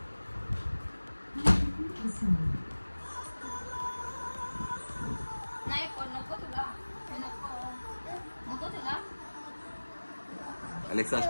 नाही नको तुला नको तुला अलेक्सा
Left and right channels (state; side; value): inverted; both; correlation -1.00